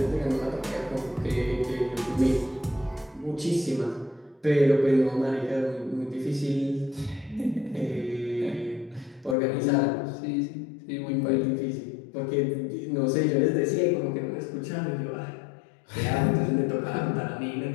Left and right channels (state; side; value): drops out; right; at 9.3 s